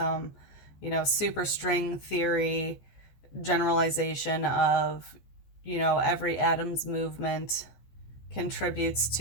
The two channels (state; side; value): late; right; 14 ms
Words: superstring theory generalization of, every atom's movement contributes